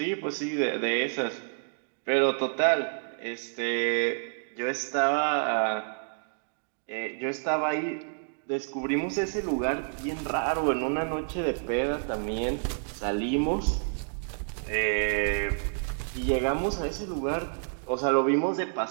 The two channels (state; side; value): silent; left; digital silence